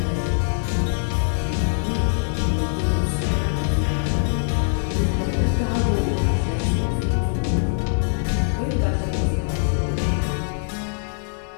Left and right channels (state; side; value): silent; right; digital silence